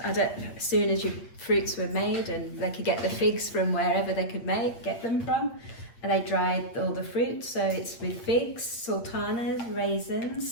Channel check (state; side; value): late; right; 8.6 ms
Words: As soon as your fruits were made and they could get the figs from wherever they could get them from, and they dried all the fruit. So it's with figs, sultanas,